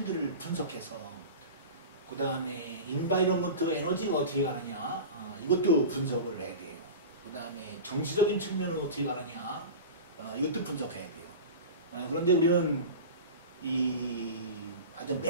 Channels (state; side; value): inverted; both; correlation -0.31